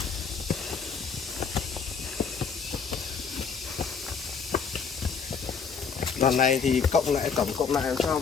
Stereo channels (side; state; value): right; quieter; 5.9 dB